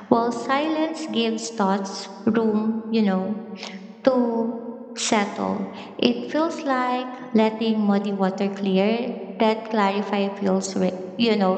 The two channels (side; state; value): both; identical; correlation 1.00